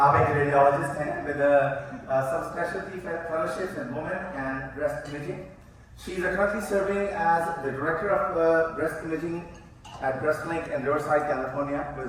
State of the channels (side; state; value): both; identical; correlation 1.00